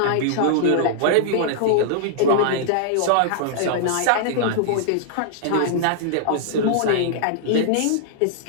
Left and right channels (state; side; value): different; both; correlation -0.01